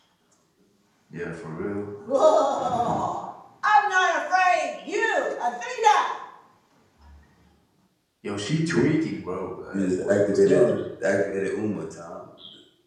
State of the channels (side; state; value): both; identical; correlation 1.00